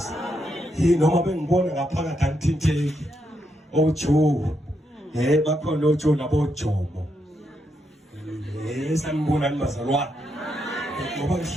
Noma bengibona ngaphakathi angithinteki. Ojo. Bakhona ojo nabojomo. Sanibona nibazalwane. Ngoba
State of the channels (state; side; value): normal; both; correlation 0.80